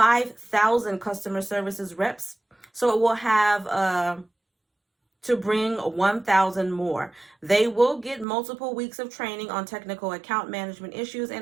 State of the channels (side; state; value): left; drops out; at 8.2 s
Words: customer services reps. So it will have to bring 1,000 more. They will get multiple weeks of training on technical account management issues